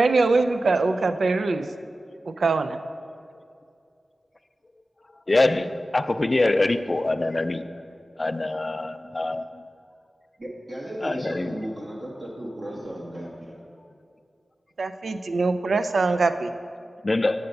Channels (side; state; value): both; normal; correlation 0.94